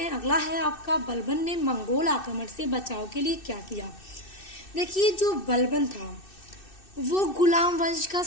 अगला है आपका, बलबन ने मंगोल आक्रमण से बचाव के लिए क्या किया। देखिए, जो बलबन था वो गुलाम वंश का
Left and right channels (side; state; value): right; late; 2.6 ms